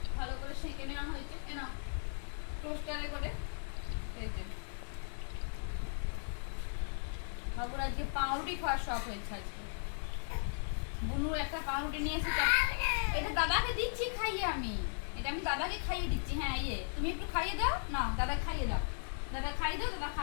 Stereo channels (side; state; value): right; silent; digital silence